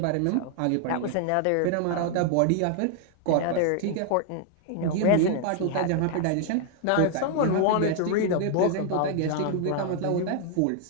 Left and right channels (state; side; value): different; both; correlation 0.00